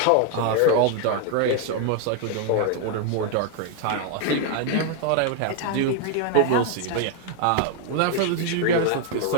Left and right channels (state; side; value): different; both; correlation 0.00